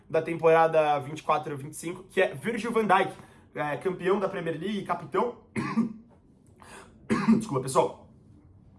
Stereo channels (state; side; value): identical; both; correlation 1.00